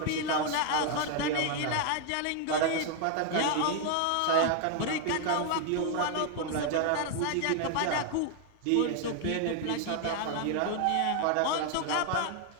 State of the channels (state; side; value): different; both; correlation 0.00